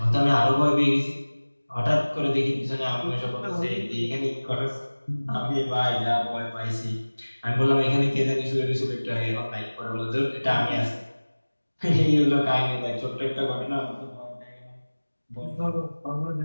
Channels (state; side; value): inverted; both; correlation -1.00